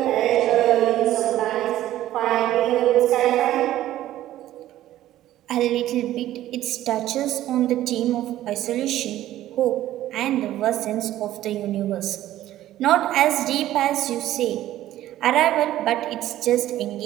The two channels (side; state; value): left; quieter; 13.7 dB